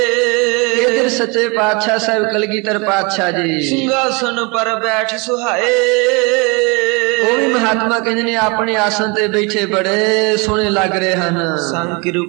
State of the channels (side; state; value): left; quieter; 29.2 dB